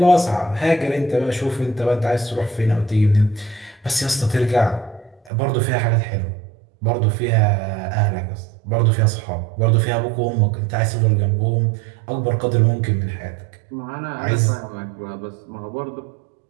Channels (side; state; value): left; drops out; at 5.3 s